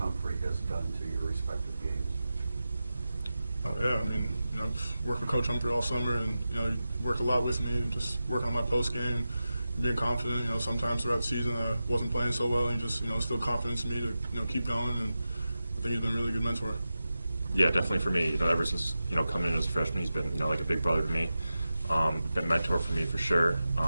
has done to your respective games? Oh, yeah. Coach Humphrey all summer, and you know, he worked a lot with me, just working on my post game, being confident. You know, sometimes throughout the season I wasn't playing so well, and he just instilled confidence in me to keep going, and I think he's been a really good mentor. Yeah, definitely for me. Ever since coming in as a freshman, he's been like a big brother to me. Been a mentor for me for sure.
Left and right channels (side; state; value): both; inverted; correlation -0.93